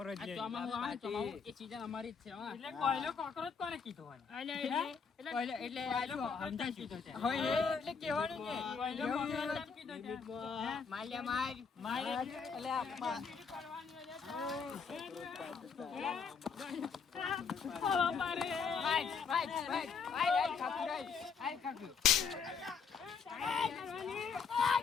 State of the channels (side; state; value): right; quieter; 5.8 dB